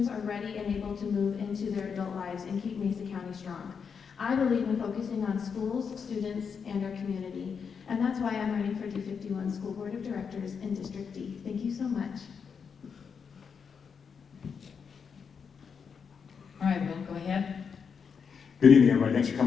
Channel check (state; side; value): quieter; right; 6.3 dB